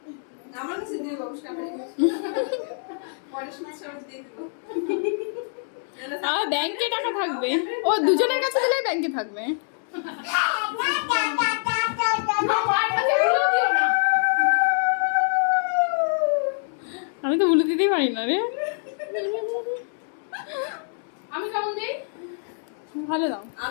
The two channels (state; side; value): silent; right; 62 dB below the other